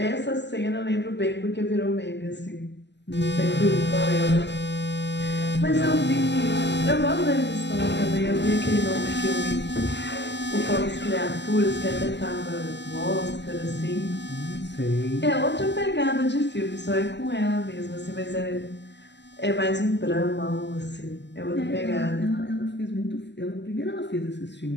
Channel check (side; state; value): right; late; 0.51 ms